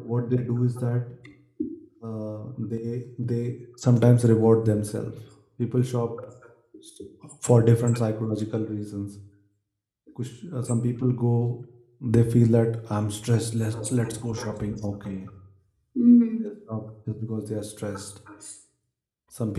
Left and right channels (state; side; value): identical; both; correlation 1.00